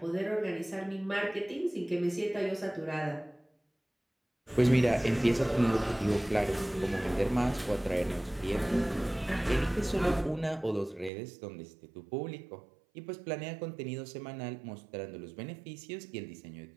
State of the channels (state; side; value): drops out; left; at 11.1 s